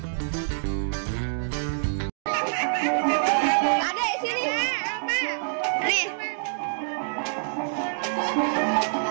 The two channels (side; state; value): left; silent; digital silence